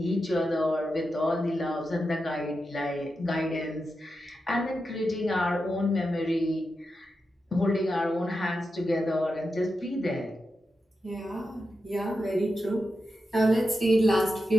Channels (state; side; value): normal; both; correlation 0.89